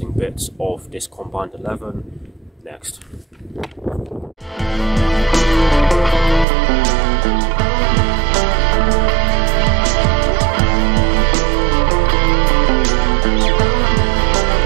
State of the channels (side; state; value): left; drops out; at 6.5 s